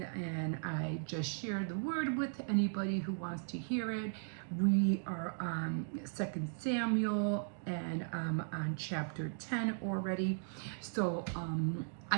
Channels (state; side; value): silent; left; digital silence